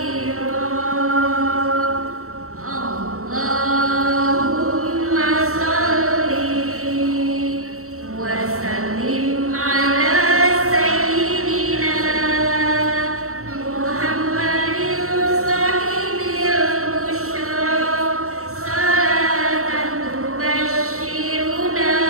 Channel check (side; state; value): left; late; 0.64 ms